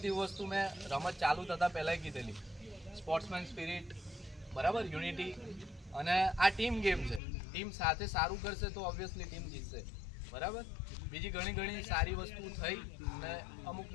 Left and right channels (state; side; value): drops out; right; at 7.2 s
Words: વસ્તુ મેં રમત ચાલુ થતાં પહેલાં કીધેલી, સ્પોર્ટ્સમેન સ્પિરિટ, બરાબર, યુનિટી, અને આ ટીમ ગેમ છે. ટીમ સાથે સારું કરશે તો ઓબ્વિયસલી ટીમ જીતશે, બરાબર. બીજી ઘણી સારી વસ્તુ થઈ અને અમુક